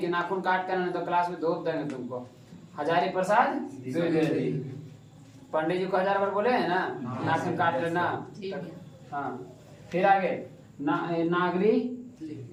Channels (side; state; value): both; identical; correlation 1.00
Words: कि नाखून काट कर, तो क्लास में धोप देंगे तुमको। हजारी प्रसाद द्विवेदी, पंडित जी को 1000 बार बोले हैं ना, नाखून काट लेना। हाँ। फिर आगे नागरी